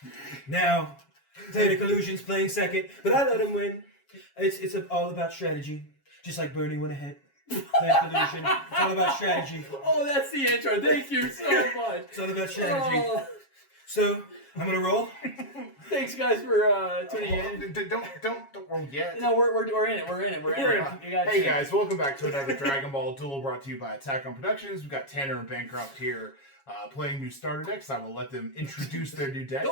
Now, Theta Collusion's playing second, but I let him win. It's all about strategy. Just like Bernie went ahead. Theta Collusion. It's all about strategy. Oh, that's the intro. Thank you so much. It's all about strategy. So, I'm gonna roll. Thanks, guys, for tuning in. Don't roll yet. No, we're in it. We're in it. Hey guys, welcome back to another Dragon Ball Duel brought to you by Attack on Productions. We've got Tanner and Bancroft here playing new starter decks. I will let them introduce their new decks.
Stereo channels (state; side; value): late; right; 7.3 ms